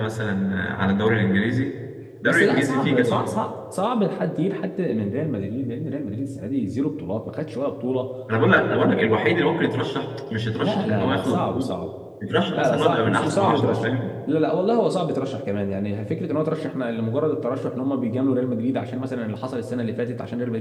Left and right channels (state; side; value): identical; both; correlation 1.00